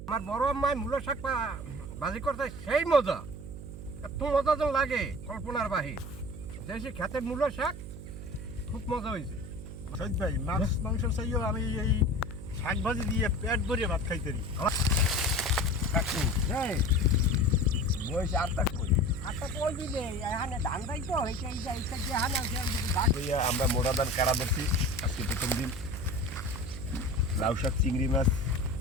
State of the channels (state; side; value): noise; right; hum, 10 dB below the sound